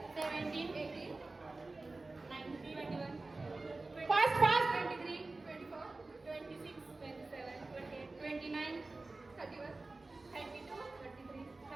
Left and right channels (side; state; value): left; quieter; 3.3 dB